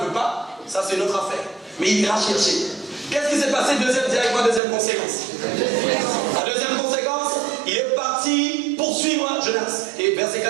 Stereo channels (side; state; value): left; drops out; at 4.6 s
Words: ça c'est une autre affaire. Mais il ira chercher. Qu'est-ce qui s'est passé? Deuxième conséquence. La deuxième conséquence, il est parti poursuivre Jonas. Et verset